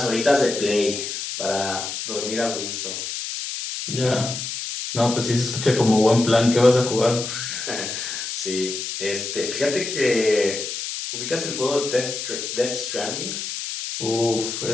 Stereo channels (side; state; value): left; noise; hiss, 5 dB below the sound